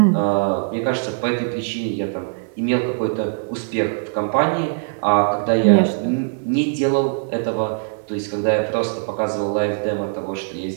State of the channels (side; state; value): left; silent; 62 dB below the other